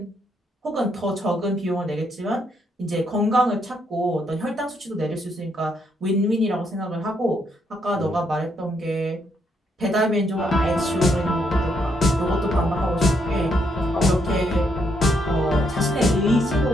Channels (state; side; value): normal; both; correlation 0.75